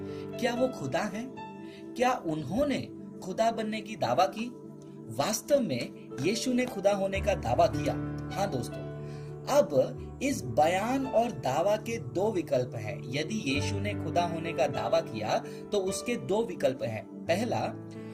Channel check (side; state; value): both; identical; correlation 1.00